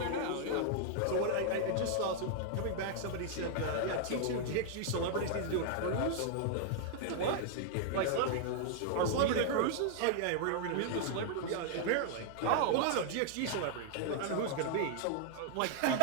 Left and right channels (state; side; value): different; both; correlation 0.00